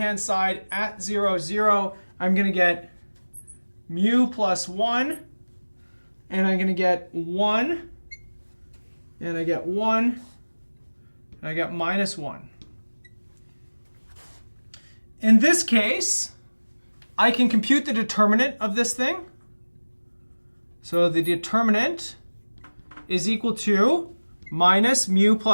side at 0, 0, I'm going to get mu plus 1, and I'm going to get 1, and I get 1, and I get minus 1. In this case, I can compute the determinant of this thing. So the determinant is equal to minus mu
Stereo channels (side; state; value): both; inverted; correlation -1.00